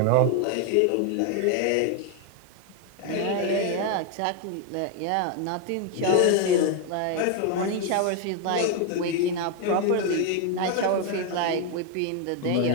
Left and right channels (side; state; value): both; different; correlation 0.01